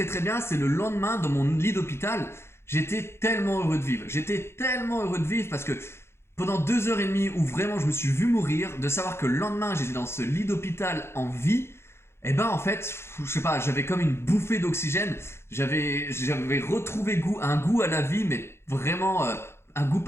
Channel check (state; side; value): late; right; 0.12 ms